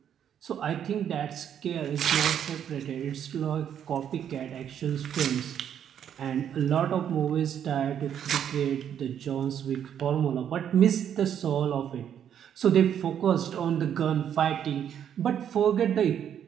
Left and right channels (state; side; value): quieter; left; 9.2 dB